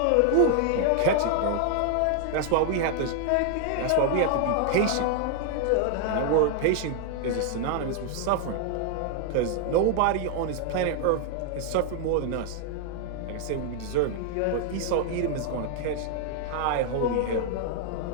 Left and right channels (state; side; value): different; both; correlation 0.00